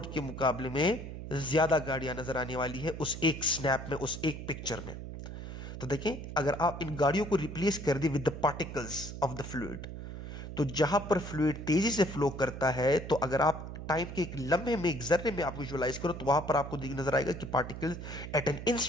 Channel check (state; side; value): noise; right; hum, 9 dB below the sound